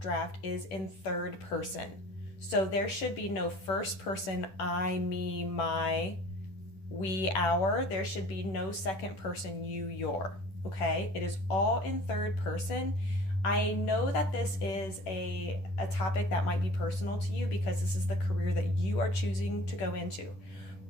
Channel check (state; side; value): late; right; 11 ms